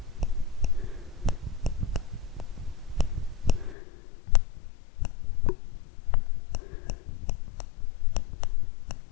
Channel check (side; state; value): right; drops out; at 3.8 s